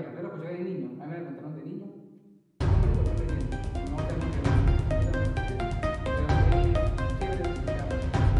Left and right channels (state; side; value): identical; both; correlation 1.00